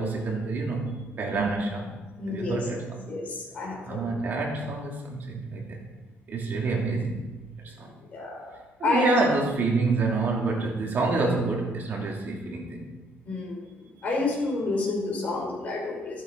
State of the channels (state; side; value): normal; both; correlation 0.66